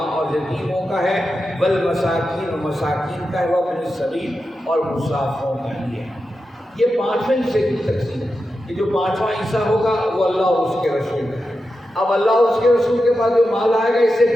اور یتیموں کا ہے، وَالْمَسَاکِینَ اور مساکین کا ہے، وَابْنِ السَّبِیلِ اور مسافروں کا ہے۔ یہ 5ویں حصے کی تقسیم ہے کہ جو 5واں حصہ ہوگا وہ اللہ اور اس کے رسول کا ہے۔ اب اللہ اور اس کے رسول کے پاس جو مال آئے گا اس سے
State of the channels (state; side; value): normal; both; correlation 0.90